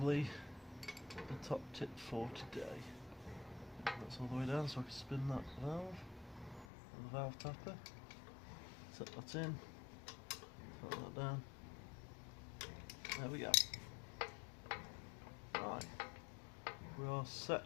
the top tip for today. That's all the way down so I can spin that valve and the valve tapper. Set that in, set that down. There we go. Right. We are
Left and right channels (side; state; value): right; drops out; at 6.7 s